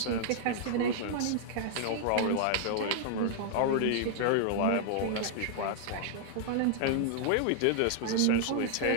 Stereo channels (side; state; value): both; different; correlation -0.01